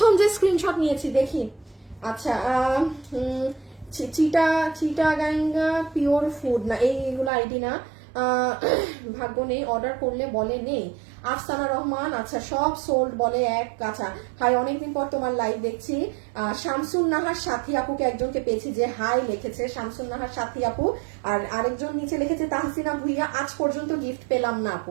যে স্ক্রিনশট নিয়েছি দেখি। আচ্ছা চিটাগাঙ্গা পিওর ফুড না, এইগুলো আইডি না, ভাগ্য নেই, অর্ডার করলে বলে নেই। আফসানা রহমান, আচ্ছা সব সোল্ড বলে এক। আচ্ছা হাই, অনেকদিন পর তোমার লাইভ দেখছি। শামসুন নাহার সাথী আপুকে একজনকে পেয়েছি যে হাই লিখেছে, শামসুন নাহার সাথী আপু। আর আরেকজন নিচে লিখেছে তাহসিনা ভুইয়া, আজ পর্যন্ত গিফট পেলাম না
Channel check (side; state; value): left; drops out; at 7.3 s